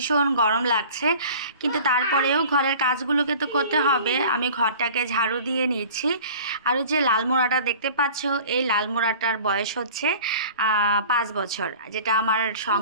গরম লাগছে। কিন্তু তারপরেও ঘরের কাজগুলোকে তো করতে হবে। আমি ঘরটাকে ঝাড়ু দিয়ে নিচ্ছি। আর ওই যে লাল মোড়াটা দেখতে পাচ্ছ, এই লাল মোড়াটার বয়স হচ্ছে 5 বছর, যেটা আমার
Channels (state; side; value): inverted; both; correlation -0.43